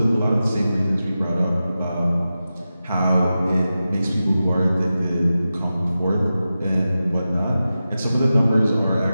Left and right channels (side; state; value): both; inverted; correlation -0.93